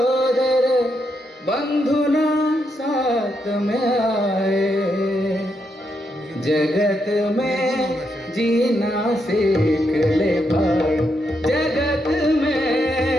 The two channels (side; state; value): both; normal; correlation 0.80